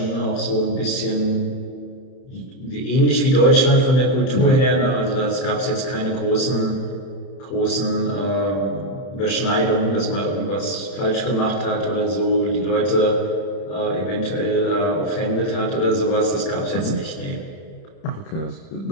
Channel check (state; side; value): late; right; 31 ms